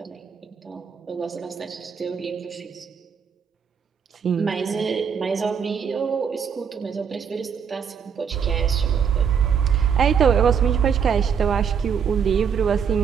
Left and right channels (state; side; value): quieter; left; 7.1 dB